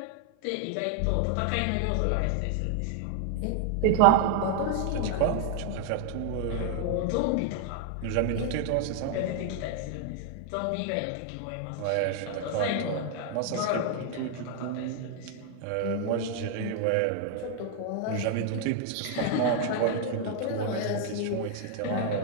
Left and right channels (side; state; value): both; different; correlation 0.00